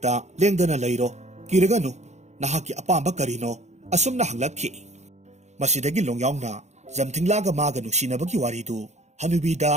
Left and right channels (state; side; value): late; left; 0.33 ms